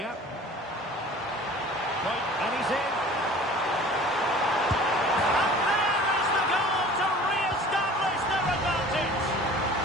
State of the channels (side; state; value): both; normal; correlation 0.45